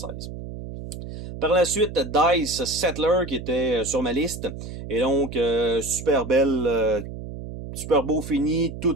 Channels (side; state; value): right; noise; hum, 10 dB below the sound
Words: Par la suite, Dice Settler qui était sur ma liste. Et donc, super belle, super beau fini,